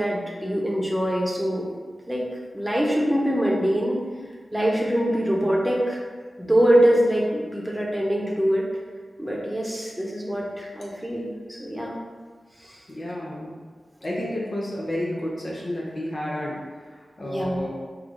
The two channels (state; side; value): normal; both; correlation 0.95